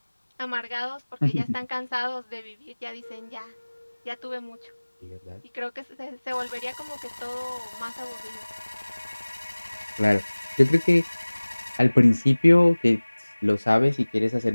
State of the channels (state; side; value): inverted; both; correlation -1.00